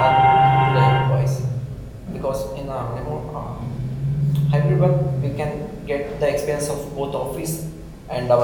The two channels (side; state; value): both; identical; correlation 1.00